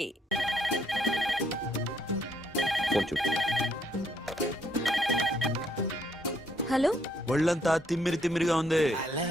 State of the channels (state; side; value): normal; both; correlation 0.71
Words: హలో, ఒళ్ళంతా తిమ్మిరిగా ఉంది.